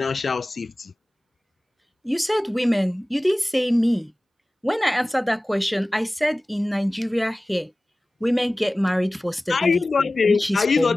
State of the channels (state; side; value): normal; both; correlation 0.97